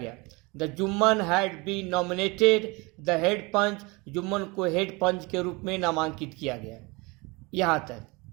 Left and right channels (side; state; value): left; quieter; 26.1 dB